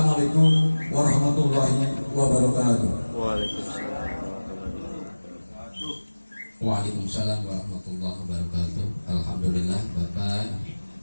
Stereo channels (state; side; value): inverted; both; correlation -1.00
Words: warahmatullahi wabarakatuh. Waalaikumsalam warahmatullahi wabarakatuh. Alhamdulillah, Bapak